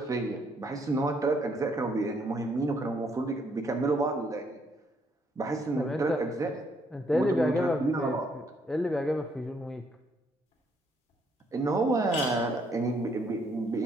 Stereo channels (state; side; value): normal; both; correlation 0.70